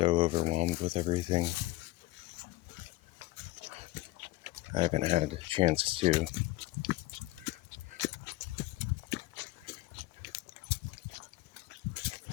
overwhelmed with everything. I haven't had a chance to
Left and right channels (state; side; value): quieter; right; 18.8 dB